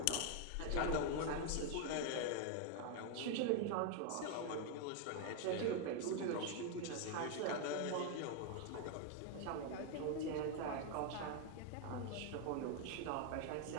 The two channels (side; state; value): both; different; correlation 0.01